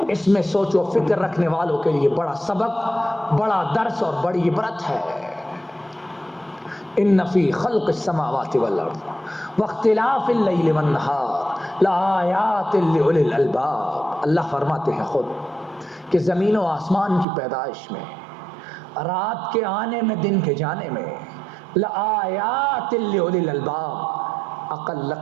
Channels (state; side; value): drops out; left; at 17.2 s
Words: اس میں سوچ و فکر رکھنے والوں کے لیے بڑا سبق، بڑا درس اور بڑی عبرت ہے. ان فی خلق السماوات والارض واختلاف اللیل والنہار لآیات لأولی الالباب. اللہ فرماتے ہیں خود کہ زمین و آسمان کی پیدائش میں، رات کے آنے میں، دن کے جانے میں، لآیات لأولی الالباب، عقل